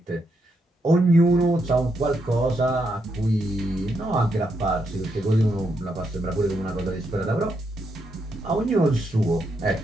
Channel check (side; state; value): both; normal; correlation 0.80